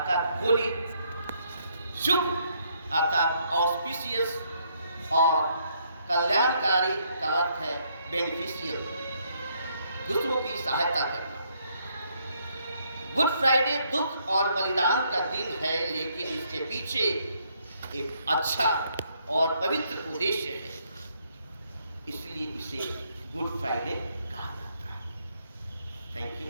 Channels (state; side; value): inverted; both; correlation -0.71